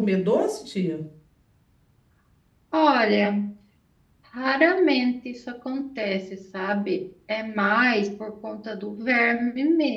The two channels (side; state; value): both; identical; correlation 1.00